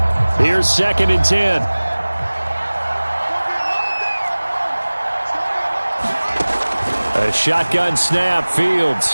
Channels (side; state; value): both; inverted; correlation -1.00